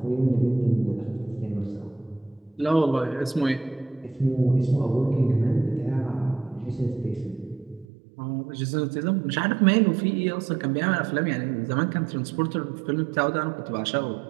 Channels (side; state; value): left; drops out; at 7.9 s